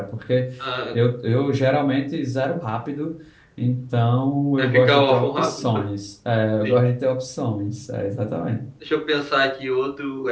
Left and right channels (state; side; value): identical; both; correlation 1.00